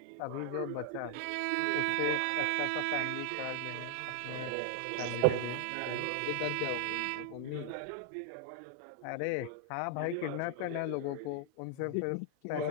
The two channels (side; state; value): both; different; correlation 0.00